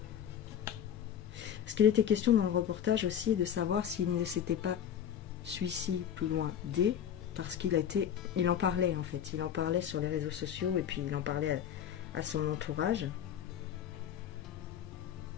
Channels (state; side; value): quieter; right; 9.3 dB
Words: Parce qu'il était question dans le reportage aussi de savoir s'il ne s'était pas suicidé plus loin D, parce il en parlait en fait, il en parlait sur les réseaux sociaux et puis il en parlait à son entourage.